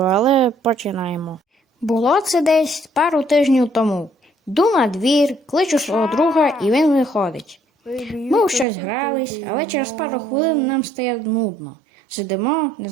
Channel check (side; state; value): left; drops out; at 8.7 s